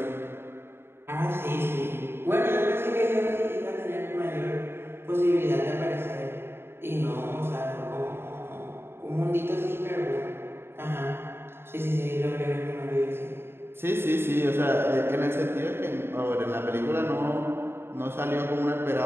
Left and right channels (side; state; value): left; late; 0.11 ms